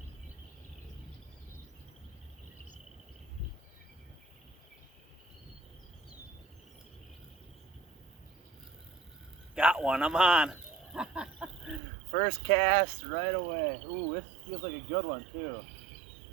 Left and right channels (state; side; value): drops out; left; at 11.8 s